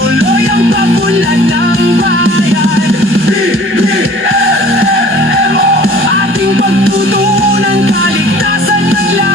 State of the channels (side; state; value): both; normal; correlation 0.49